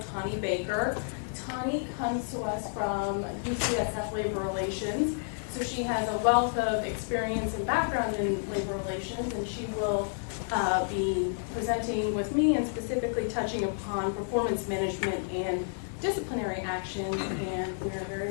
Tani Baker. Tani comes to us from UCSF Labor Relations, so she has a wealth of experience and background in labor relations, and she will be presenting with me and specifically touching upon performance management and disciplinary actions, and we're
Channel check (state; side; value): silent; right; 58 dB below the other